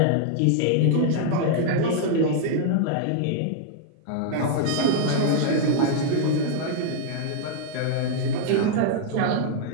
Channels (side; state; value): both; different; correlation -0.01